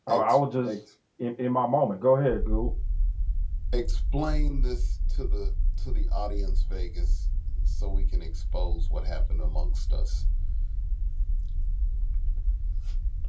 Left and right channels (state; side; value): identical; both; correlation 1.00